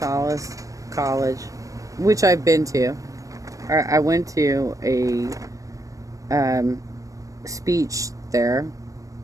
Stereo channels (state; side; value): late; left; 0.16 ms